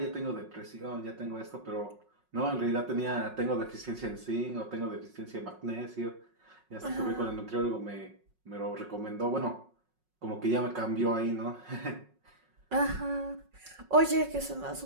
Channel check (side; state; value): left; late; 5.4 ms